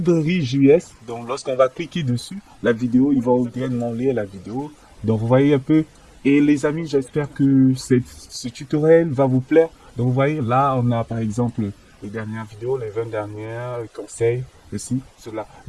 JS. Donc lorsqu'on va cliquer dessus, la vidéo, il va directement lire la vidéo. Donc vous voyez un peu. Et les amis, j'espère que ce tutoriel va vous plaire. Donc vous voyez, là, on a par exemple les dernières vidéos, les 20 dernières, les conseils, ceci, cela.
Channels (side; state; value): both; identical; correlation 1.00